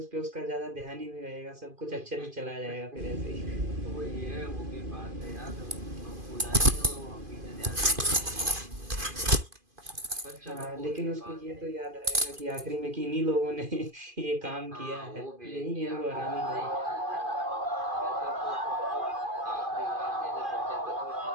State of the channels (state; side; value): late; left; 2.5 ms